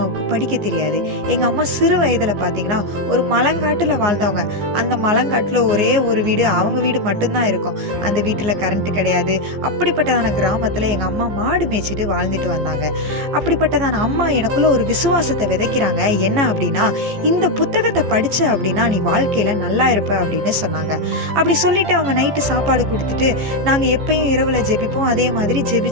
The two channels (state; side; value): late; left; 14 ms